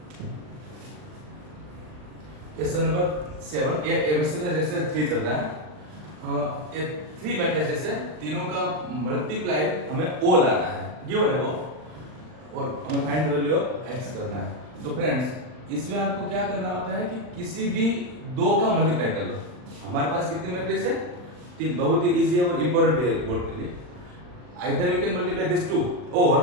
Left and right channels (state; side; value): late; left; 39 ms